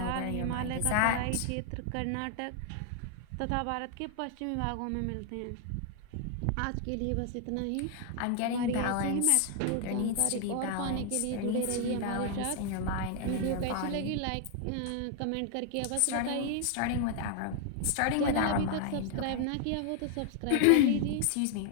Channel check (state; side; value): different; both; correlation 0.00